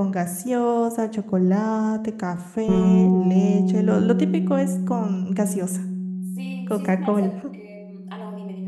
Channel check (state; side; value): identical; both; correlation 1.00